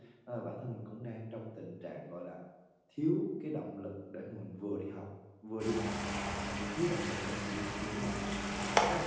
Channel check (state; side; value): identical; both; correlation 1.00